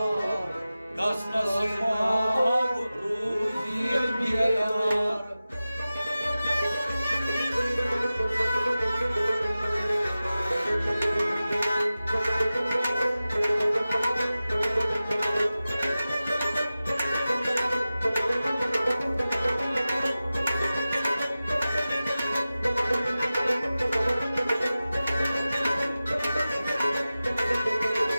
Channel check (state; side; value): inverted; both; correlation -0.95